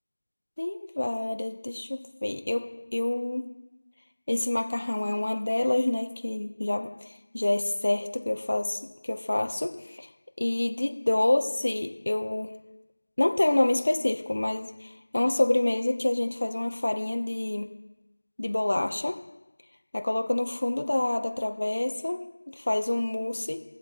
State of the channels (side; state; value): both; inverted; correlation -1.00